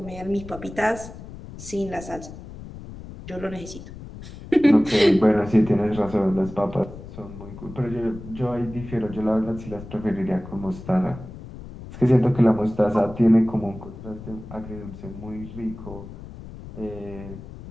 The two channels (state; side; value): noise; left; rumble, 13 dB below the sound